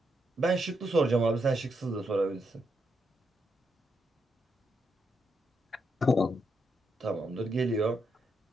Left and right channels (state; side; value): normal; both; correlation 0.81